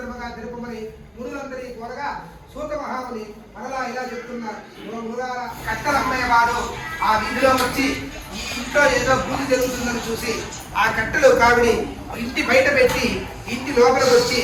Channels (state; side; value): identical; both; correlation 1.00